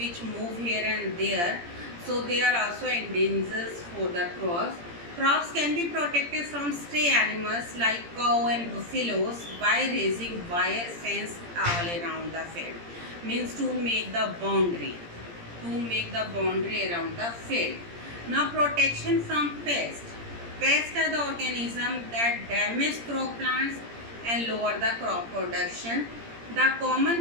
move here and there. So they are also endangered for the crops. Crops can be protected from stray animals like cow and buffaloes by raising wire fence all around the field. Means to make the boundary. To make the boundary around the field. Now protection from pests. Pests are the organisms that damage crop plants and lower the crop production. The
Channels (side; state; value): left; late; 17 ms